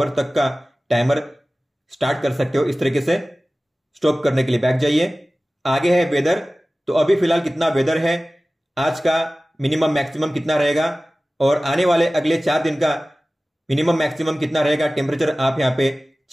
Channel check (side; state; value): both; normal; correlation 0.97